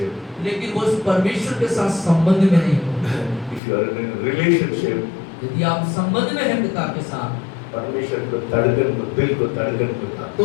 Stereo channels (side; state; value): right; drops out; at 3.6 s